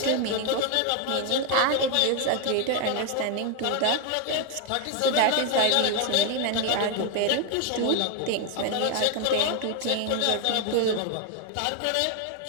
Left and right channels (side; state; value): both; different; correlation 0.01